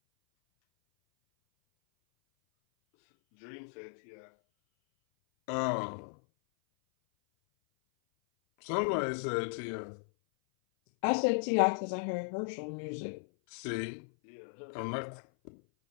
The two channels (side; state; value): right; silent; 54 dB below the other